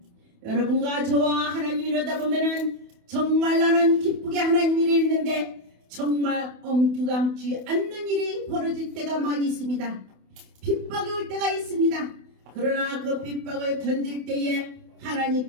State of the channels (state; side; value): late; left; 28 ms